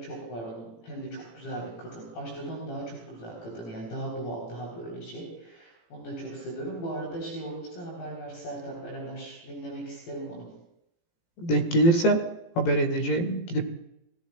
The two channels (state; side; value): late; right; 18 ms